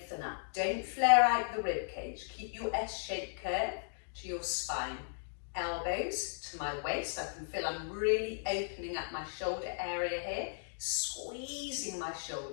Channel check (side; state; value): right; silent; digital silence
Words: up, don't flare out the rib cage. Keep your S-shaped curve to your spine. Elbows to my waist. I can feel I'm really opening up my shoulder area here, squeezing my